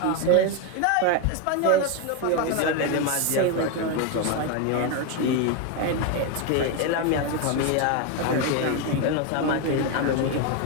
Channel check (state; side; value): different; both; correlation 0.02